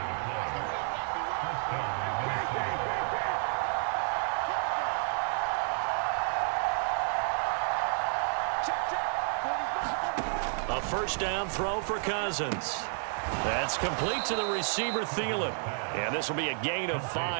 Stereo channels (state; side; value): silent; left; 57 dB below the other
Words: A 1st down throw for Cousins. That's complete to the receiver, Thielen. And this will be a gain of